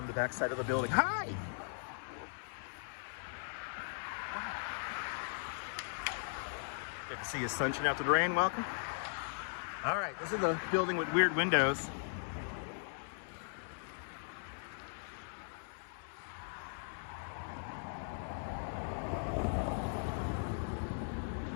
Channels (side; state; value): right; silent; 52 dB below the other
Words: the back side of the building. Hi! Good to see you, sunshine after the rain. Welcome. All right, this is a building with weird windows.